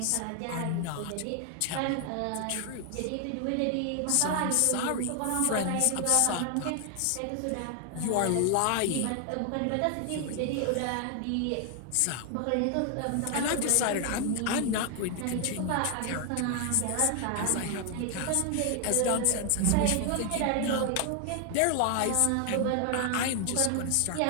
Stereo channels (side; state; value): both; different; correlation 0.00